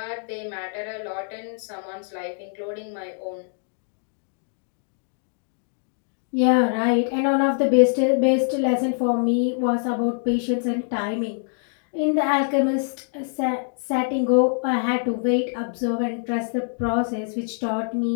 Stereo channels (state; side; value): silent; right; 59 dB below the other